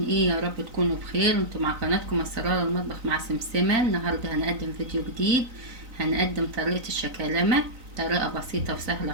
ايه؟ يا رب تكونوا بخير. انتوا مع قناتكم اسرار المطبخ مع سمسمة. النهارده هنقدم فيديو جديد، هنقدم طريقة الشكالمة، طريقة بسيطة وسهلة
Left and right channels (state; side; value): late; left; 3.9 ms